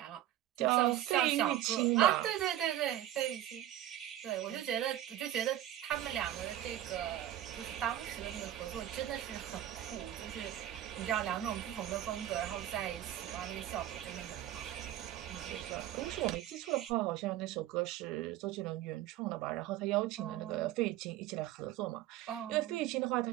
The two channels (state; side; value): quieter; left; 12.8 dB